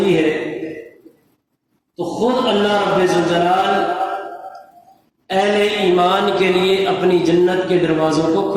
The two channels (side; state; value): both; identical; correlation 1.00